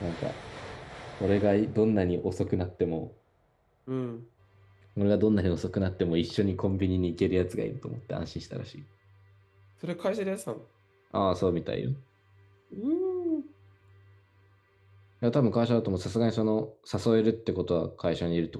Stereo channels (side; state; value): both; identical; correlation 1.00